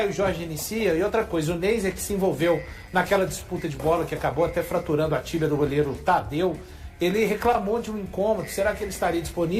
Jorge inicia? E outra coisa, o Neis é que se envolveu naquela disputa de bola que acabou até fraturando a tíbia do goleiro Tadeu. Ele reclamou de um incômodo. Será que ele estaria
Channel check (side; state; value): both; identical; correlation 1.00